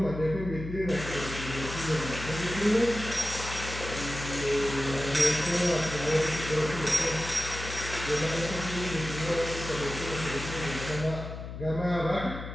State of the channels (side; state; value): left; noise; hum, 9 dB below the sound